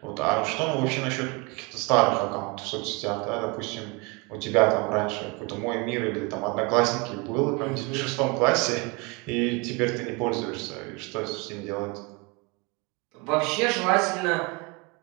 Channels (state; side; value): quieter; left; 28.6 dB